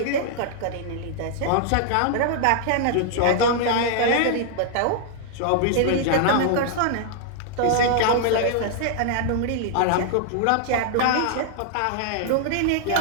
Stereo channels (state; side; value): different; both; correlation -0.01